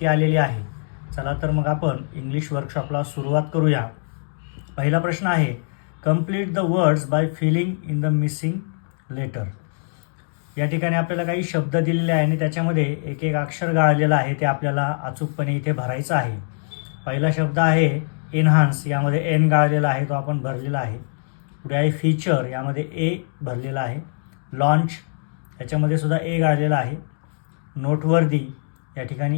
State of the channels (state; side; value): silent; right; digital silence